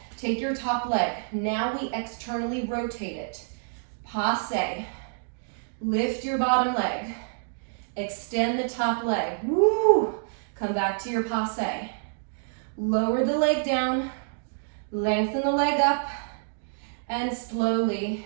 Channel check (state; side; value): silent; left; digital silence